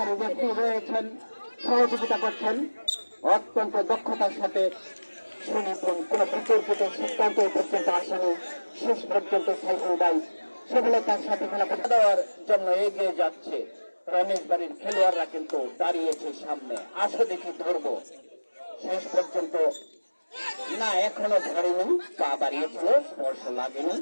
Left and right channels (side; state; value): both; inverted; correlation -1.00